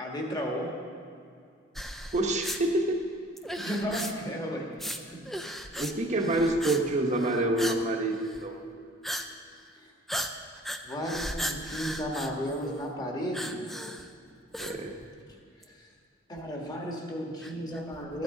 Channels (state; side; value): normal; both; correlation 0.52